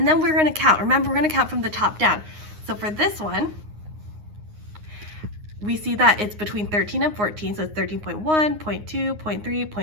then we're gonna count. Remember, we're gonna count from the top down. So for this one, we see that it's between 13 and 14. So it's 13.1, 0.2, 0.3,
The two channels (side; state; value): left; late; 9.6 ms